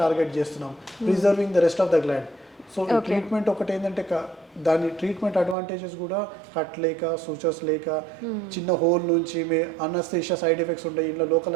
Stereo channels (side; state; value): left; drops out; at 5.6 s